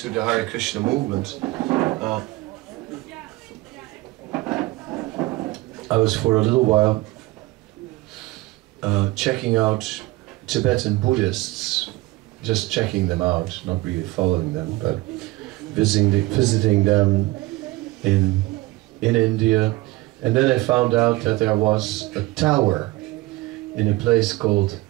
the Hare Krishna movement. I was for a little while checking out Tibetan Buddhists, just checking them out, not really following them, but visiting them in India. And then I found out that there was a tower in a place called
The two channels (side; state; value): left; quieter; 20.0 dB